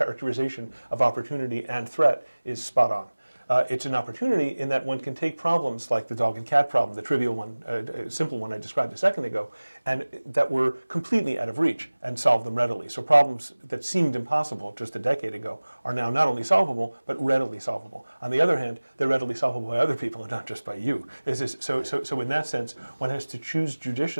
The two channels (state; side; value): inverted; both; correlation -1.00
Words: of opportunity and threat is spot on. It's an opportunity in that one can take problems like the dog and cat problem, the trivial one, simple one I described a second ago, and that were completely out of reach, and solve them readily. So problems that seemed impossible just a decade ago are now not only solvable, but readily solvable. On the other hand, they're readily solvable by other people and not just by you. So in that sense, one has to choose